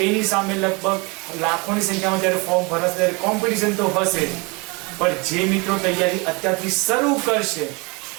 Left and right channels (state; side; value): quieter; left; 28.3 dB